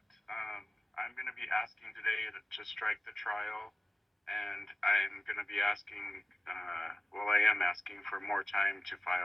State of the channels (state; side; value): normal; both; correlation 0.96